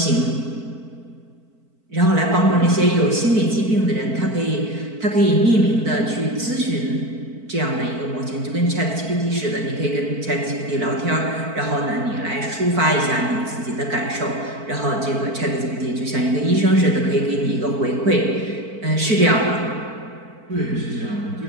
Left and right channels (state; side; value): late; left; 4.5 ms